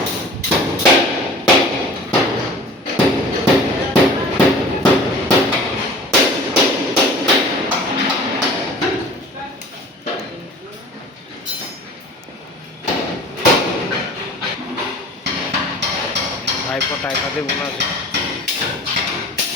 ভাইপো টাইপাতে বোনা আছে।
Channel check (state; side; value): normal; both; correlation 0.43